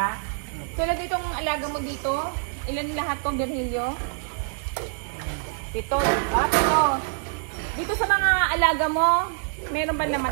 Tulad itong alaga mo dito, ilan lahat tong Virgilio? 7. Dito sa mga alaga mo, meron ba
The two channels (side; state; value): left; silent; digital silence